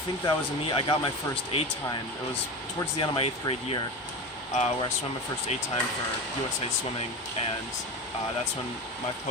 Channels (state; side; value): normal; both; correlation 0.25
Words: that was a meet. I got my first A time. It was towards the end of my 8th grade year, where I swam my first A time for USA Swimming, and that's when my